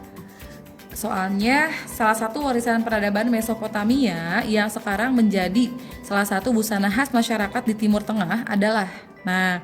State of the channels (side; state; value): both; identical; correlation 1.00